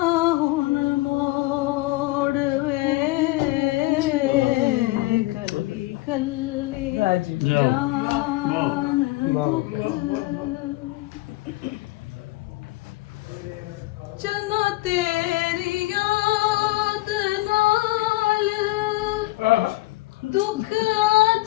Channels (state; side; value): quieter; right; 19.8 dB